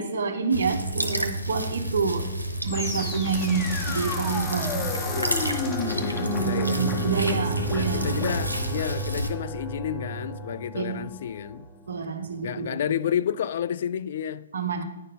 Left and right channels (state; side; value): inverted; both; correlation -0.48